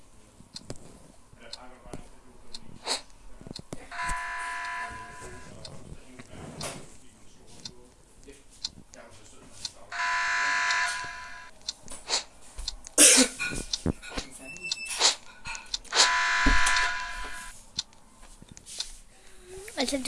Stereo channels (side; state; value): both; identical; correlation 1.00